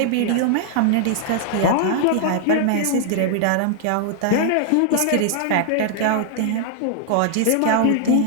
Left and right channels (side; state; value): both; different; correlation 0.00